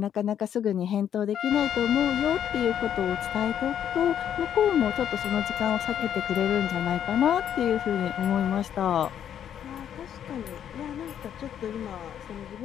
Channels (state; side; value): quieter; right; 9.5 dB